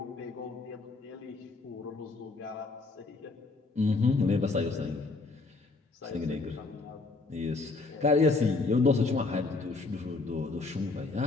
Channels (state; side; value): quieter; right; 3.7 dB